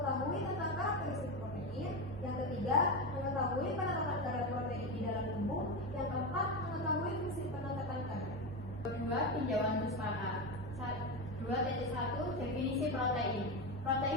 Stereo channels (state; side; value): normal; both; correlation 0.16